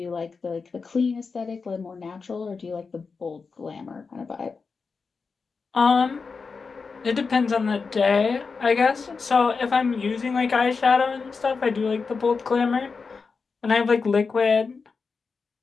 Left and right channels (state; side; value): quieter; right; 4.8 dB